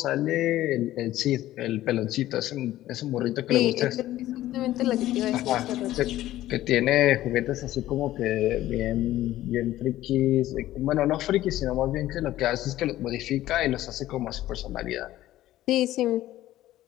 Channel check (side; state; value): right; quieter; 14.6 dB